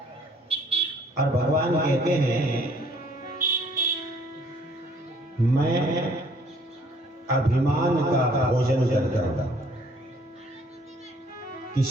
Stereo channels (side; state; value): both; normal; correlation 0.60